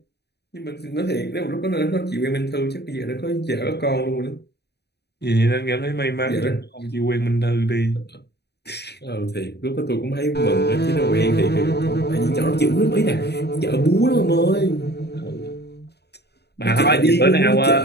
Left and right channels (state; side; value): late; right; 0.48 ms